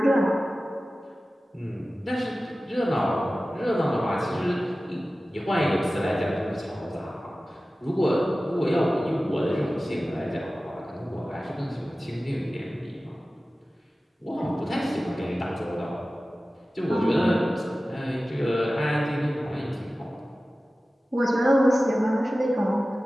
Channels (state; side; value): normal; both; correlation 0.96